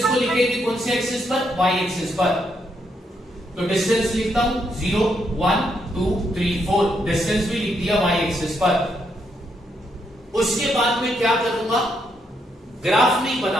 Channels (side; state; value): both; normal; correlation 0.77